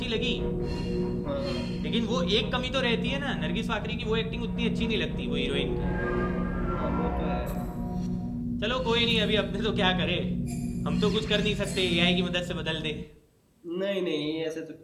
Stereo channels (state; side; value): identical; both; correlation 1.00